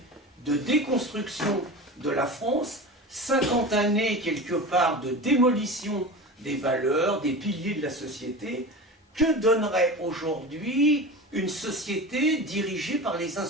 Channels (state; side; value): normal; both; correlation 0.30